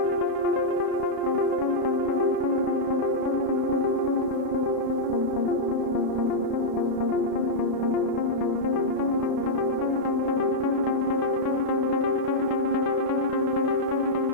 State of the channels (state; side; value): late; left; 31 ms